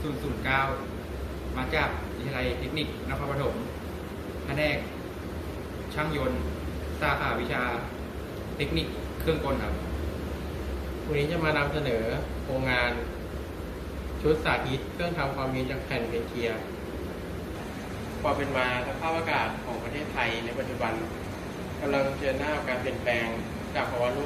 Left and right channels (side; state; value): both; identical; correlation 1.00